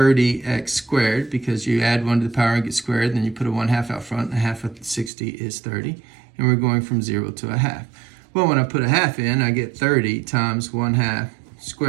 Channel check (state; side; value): drops out; left; at 5.1 s